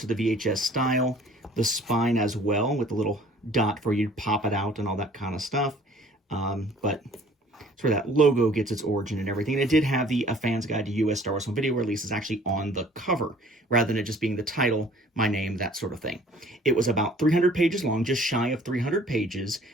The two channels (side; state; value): both; normal; correlation 0.53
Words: the VHS style, the spine as well with the little dot for you to pop it out and all that kind of stuff. But it's where that logo gets its origin and everything. And it did have the A Fan's Guide to U.S. Star Wars Home Video Releases actually on the cover, rather than it just being the title, my name, that sort of thing. It was about 300 pages long, just shy of 300 pages.